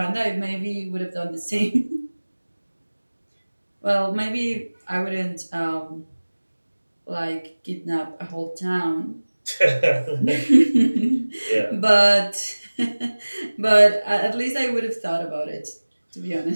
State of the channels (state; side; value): inverted; both; correlation -1.00